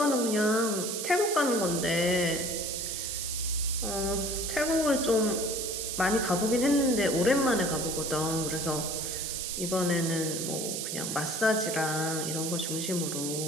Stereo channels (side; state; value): right; noise; hiss, 3 dB below the sound